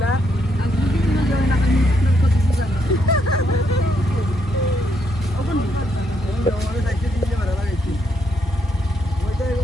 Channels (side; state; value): both; normal; correlation 0.76